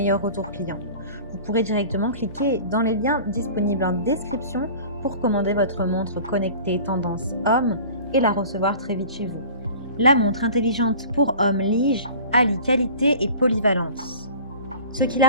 retours clients. Vous pourrez directement cliquer dans les liens disponibles en description pour commander votre montre connectée tendance homme et la recevoir très vite chez vous. La montre intelligente pour homme Lige allie qualité et polyvalence, ce qui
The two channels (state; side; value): inverted; both; correlation -0.42